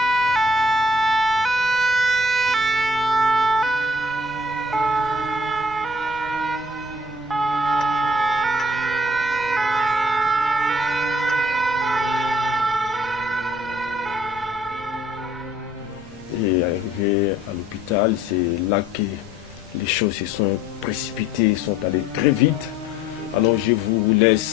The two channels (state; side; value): noise; left; rumble, 22 dB below the sound